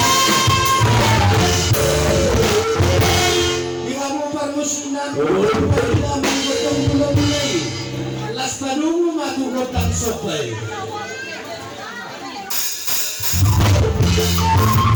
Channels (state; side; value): identical; both; correlation 1.00